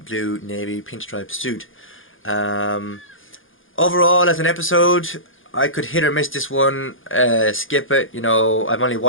blue navy pinstripe suit. Overall, as an episode, I could hit or miss this one, skip it. You know, I've only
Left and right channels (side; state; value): right; late; 0.58 ms